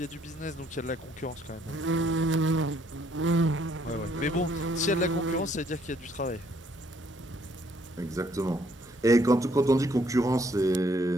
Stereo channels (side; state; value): both; normal; correlation 0.67